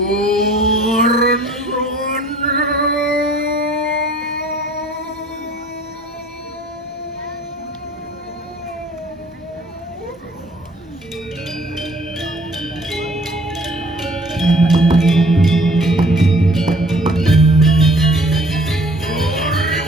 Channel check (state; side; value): normal; both; correlation 0.55